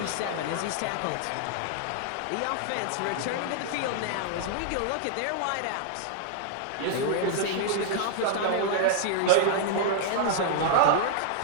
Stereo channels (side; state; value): both; different; correlation -0.01